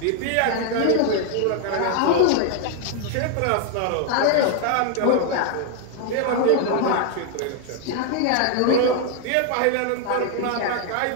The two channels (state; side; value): different; both; correlation 0.00